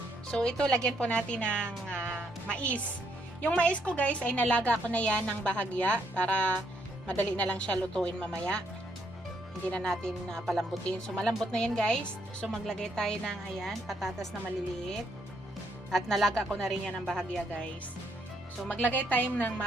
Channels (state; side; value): normal; both; correlation 0.73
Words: So, ito, lagyan po natin ng mais. Yung mais ko, guys, ay nalaga ko na yan ng bahagya para madali na lang siya lutuin mamaya. Hindi na natin palambutin. So, malambot na yan, guys. So, maglagay tayo ng, ayan, patatas na maliliit. At nalaga ko na rin yan ng bahagya, guys. So, maglagay tayo ng